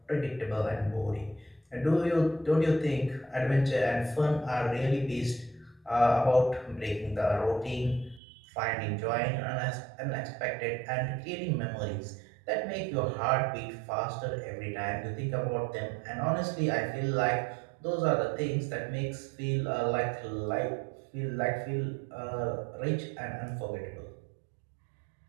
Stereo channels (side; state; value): left; drops out; at 8.2 s